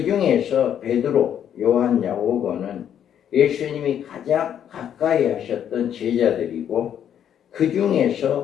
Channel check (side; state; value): right; quieter; 9.5 dB